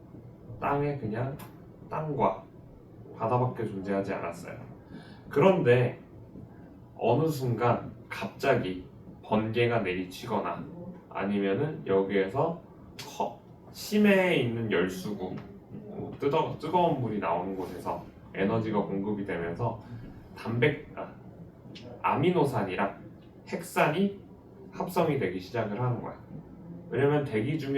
땅에 그냥 땅과 바다밖에 존재하지 않았어요. 그런데 어느 순간 갑자기 번개가 내리치거나 아니면은 여기에서 심해에 있는 열수구, 뜨거운 물이 나오는 곳에서 에너지가 공급이 되면서 아미노산이랑 핵산이 합성이 되기 시작을 하는 거야. 왜냐면 대기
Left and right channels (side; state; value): both; identical; correlation 1.00